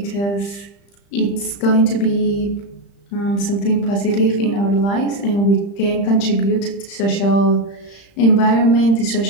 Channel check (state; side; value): late; right; 35 ms